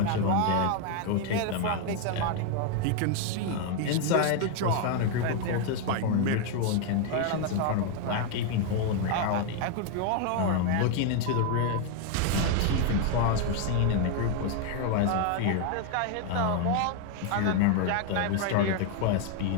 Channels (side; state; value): both; different; correlation 0.01